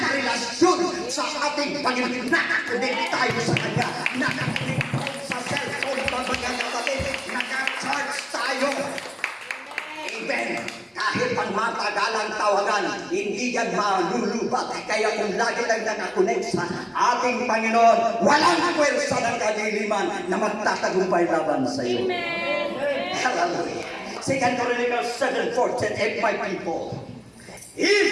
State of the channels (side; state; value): both; identical; correlation 1.00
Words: relasyon sa ating Panginoon. Nakakunik tayo sa Kanya. Nakakunik sa cellphone pa mga kapatid. Naka-charge tayo. Amen. Kahit pang matagalang tawagan, hindi yan malulubat. Kaya kung lagi lang nakakunik sa ating Panginoon, walang pwersa ng kadiliman na magtatagumpay laban sa iyo. Amen. Hallelujah. 2 Chronicles 7:14, if my people